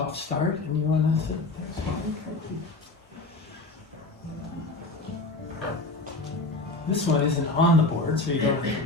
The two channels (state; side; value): quieter; right; 3.1 dB